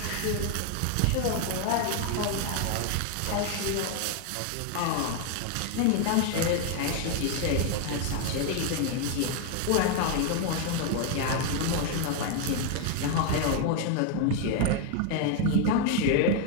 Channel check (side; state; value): both; different; correlation 0.01